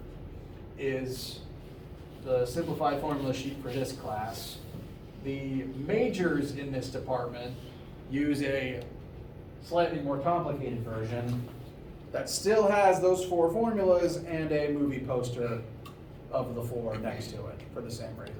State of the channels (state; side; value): identical; both; correlation 1.00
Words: is the simplified formula sheet for this class. The majors in this department use a slightly more complicated version that still has those 4 formulas and a movie poster of the 4 next to it for the same reason.